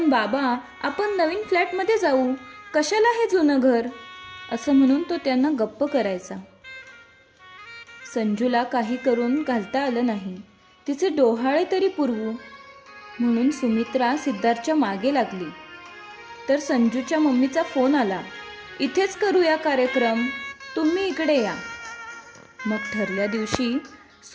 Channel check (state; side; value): identical; both; correlation 1.00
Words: बाबा, आपण नवीन फ्लॅटमध्ये जाऊ, कशाला हे जुनं घर, असं म्हणून तो त्यांना गप्प करायचा. संजूला काही करून घालता आलं नाही. तिचे डोहाळे तरी पुरवू म्हणून सुमित्रा सिद्धार्थच्या मागे लागली. तर संजूच्या मम्मीचा फोन आला, इथेच करूया कार्यक्रम, तुम्ही इकडे या. मग ठरल्या दिवशी